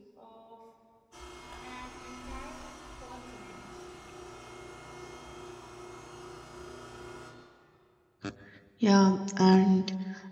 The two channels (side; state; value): both; identical; correlation 1.00